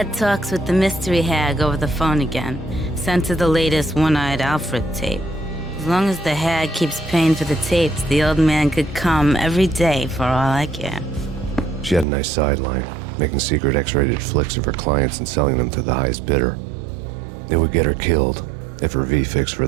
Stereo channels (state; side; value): drops out; left; at 12.1 s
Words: talks with the mystery hag over the phone again. Sent her the latest One-Eyed Alfred tape. As long as the hag keeps paying for the tapes, the old man could come every day for all I care. She had a nice sideline, making secret X-rated flicks of her clients and selling them to the highest bidder. It would get her killed if her V-fix for